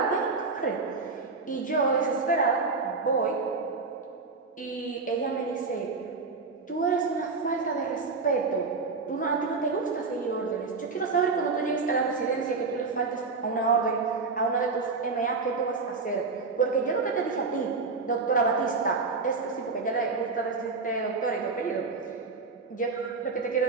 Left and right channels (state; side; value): quieter; left; 4.3 dB